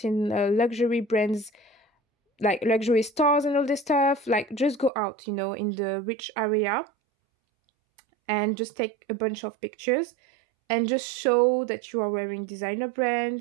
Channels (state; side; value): drops out; left; at 4.9 s